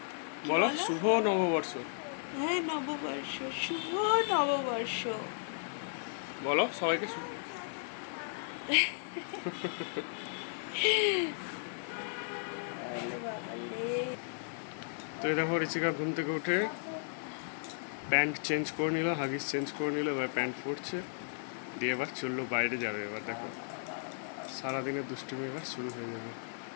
বলো বলো? শুভ নববর্ষ। হ্যাঁ, নববর্ষ, শুভ নববর্ষ। বলো সবাইকে তো এই দেখো ঋষিকা ঘুম থেকে উঠে প্যান্ট চেঞ্জ করে নিল, হাগিস চেঞ্জ করে নিল, এবার প্যান্ট পরছে, দিয়ে এবার চললো বাইরে যাবে। এবার দেখো সারাদিনের দুষ্টুমি এবার শুরু হয়ে যাবে।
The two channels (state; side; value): silent; right; 54 dB below the other